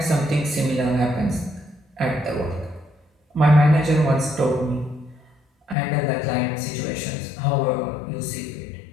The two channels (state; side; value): drops out; right; at 5.8 s